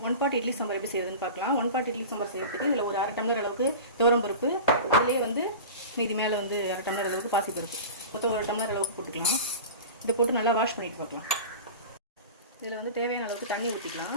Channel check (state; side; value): inverted; both; correlation -0.32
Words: 1 part idli sambar எப்படி செய்யறதுன்னு பார்க்கலாம். 1 part இட்லி சாம்பார் செய்யறதுக்கு இதில் ஒரு 1/2 டம்ளர் அளவுக்கு துவரம் பருப்பு, அதிலே வந்து மீதி மேலே வந்து 1/2 டம்ளர் அளவுக்கு பாசி பருப்பு, மொத்தம் 1 டம்ளர் அளவுக்கு போட்டுக்கலாம். இதை போட்டு நல்லா வாஷ் பண்ணிட்டு பார்க்கலாம். இதில் வந்து தேவையான அளவுக்கு தண்ணி